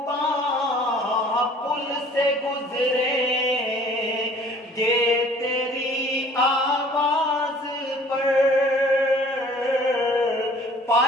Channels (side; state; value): both; normal; correlation 0.52